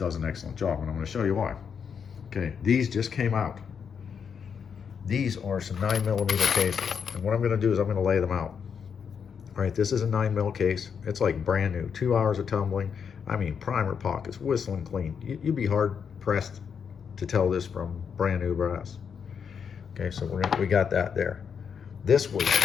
an excellent job, and I'm gonna show you why. Okay, these just came out. These are some 9mm cases. And what I'm gonna do is I'm gonna lay them out. All right, this is a 9mm case. It's like brand new, 2 hours of tumbling. I mean, primer pockets, whistling clean. You'd be hard pressed to tell this from brand new brass. Okay, so we got that there. This was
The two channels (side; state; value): right; quieter; 6.8 dB